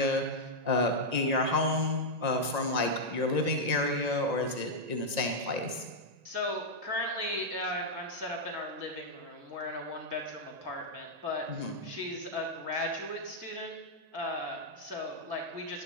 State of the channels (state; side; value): late; left; 1.9 ms